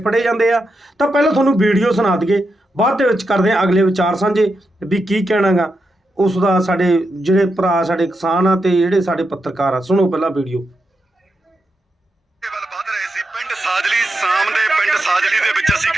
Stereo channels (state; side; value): normal; both; correlation 0.86